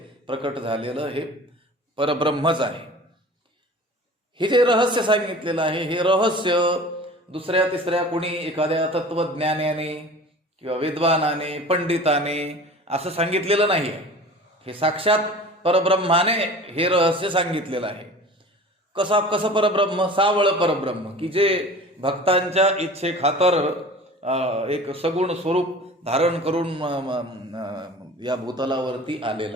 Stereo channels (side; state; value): both; normal; correlation 0.41